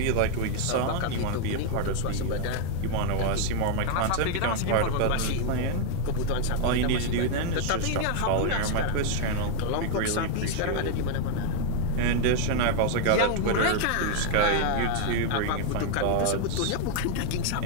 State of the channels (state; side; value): different; both; correlation 0.00